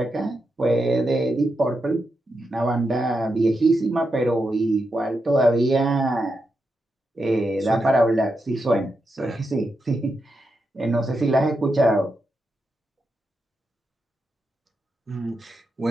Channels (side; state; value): both; normal; correlation 0.86